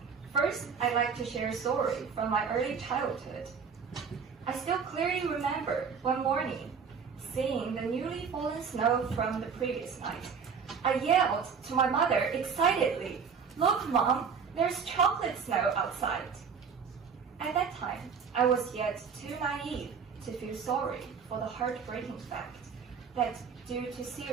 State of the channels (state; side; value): quieter; left; 6.2 dB